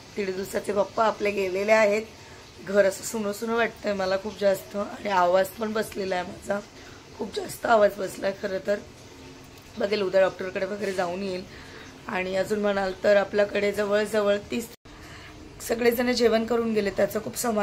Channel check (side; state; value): both; identical; correlation 1.00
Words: 1.5 दिवसाचे बाप्पा आपले गेलेले आहेत. घर असं सुनं सुनं वाटतंय मला खूप जास्त आणि आवाज पण बसलेला आहे माझा. खूप जास्त आवाज बसलाय खरं तर. बघेल उद्या डॉक्टरकडे वगैरे जाऊन येईल. आणि अजून म्हणाल तर आपल्याकडे जवळजवळ 30 सगळेजण जेवण करून गेले. त्याचं खूप